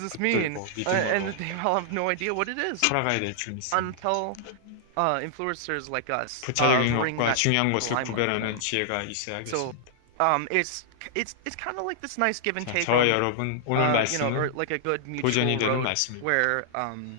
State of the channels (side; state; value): both; different; correlation -0.01